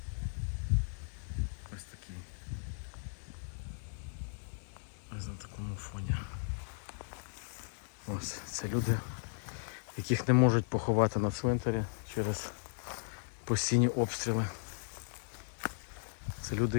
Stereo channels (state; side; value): silent; right; digital silence